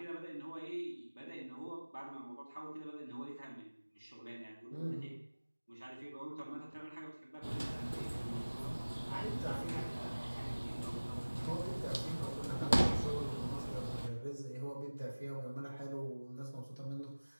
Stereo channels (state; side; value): inverted; both; correlation -1.00